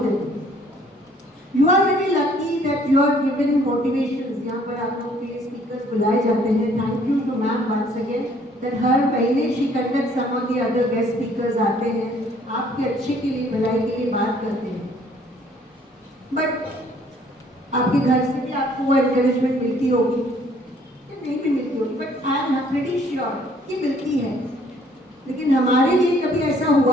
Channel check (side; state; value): both; normal; correlation 0.60